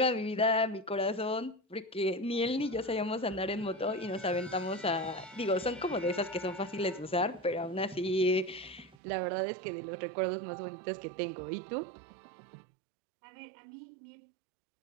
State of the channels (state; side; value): drops out; left; at 9.0 s